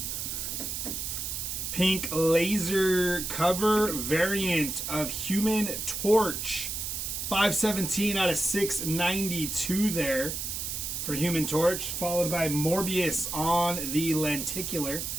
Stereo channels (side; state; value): right; noise; hiss, 4 dB below the sound